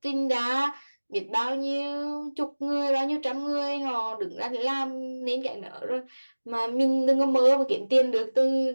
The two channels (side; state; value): both; inverted; correlation -1.00